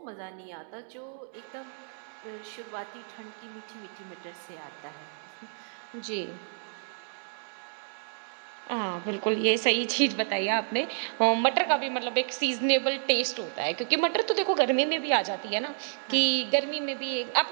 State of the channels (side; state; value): left; silent; digital silence